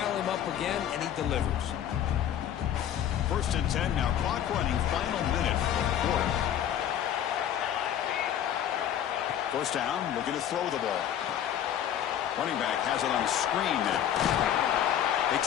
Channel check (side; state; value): right; quieter; 10.3 dB